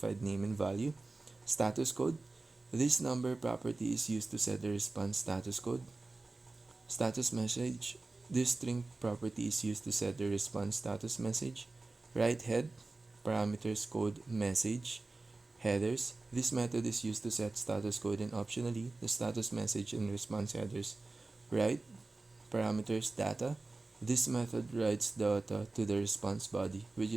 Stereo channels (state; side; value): quieter; left; 3.4 dB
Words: name and value. Status code. This number property is used to set the response status code. Status message. This string property is used to set the response status message. Write head, parameters code message, headers. This method is used to set status code and optionally the status message and response headers. Write, parameters data. This method writes data to the response body, which